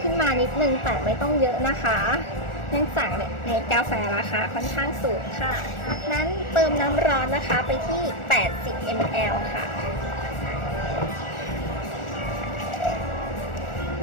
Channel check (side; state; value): right; late; 1.4 ms